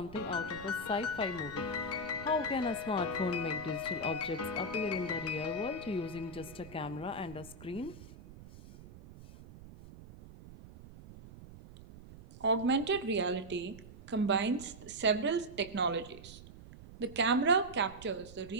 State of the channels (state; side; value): noise; right; rumble, 17 dB below the sound